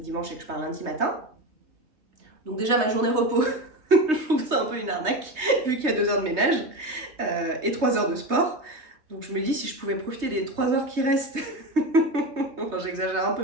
et que je pars lundi matin. Donc déjà, ma journée repos, je trouve ça un peu une arnaque, vu qu'il y a 2 heures de ménage et 3 heures de sport. Donc je me dis, si je pouvais profiter des 3 heures qui restent, enfin j'exagère un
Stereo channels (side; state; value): left; late; 3.2 ms